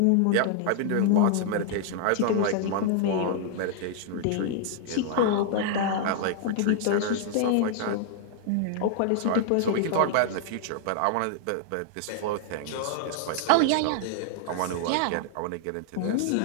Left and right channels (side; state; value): both; different; correlation -0.01